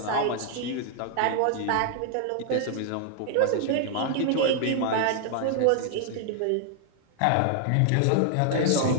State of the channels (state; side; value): different; both; correlation 0.00